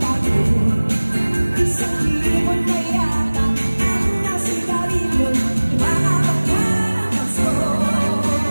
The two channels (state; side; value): inverted; both; correlation -1.00